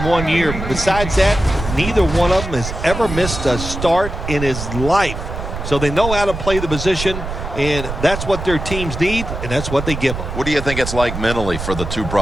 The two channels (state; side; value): noise; right; rumble, 6 dB below the sound